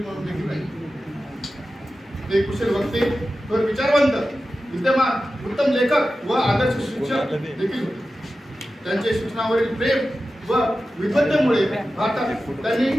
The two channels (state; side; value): normal; both; correlation 0.93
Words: म्हणून देखील राहिले. ते कुशल वक्ते, थोर विचारवंत, विद्यमान उत्तम लेखक व आदर्श शिक्षक देखील होते. त्यांचे शिक्षणावरील प्रेम व विद्वत्तेमुळे भारतात त्यांनी